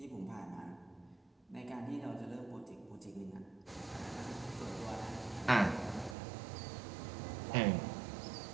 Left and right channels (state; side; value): drops out; left; at 6.2 s